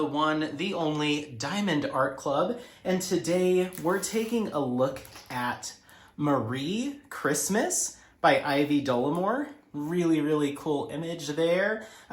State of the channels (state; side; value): identical; both; correlation 1.00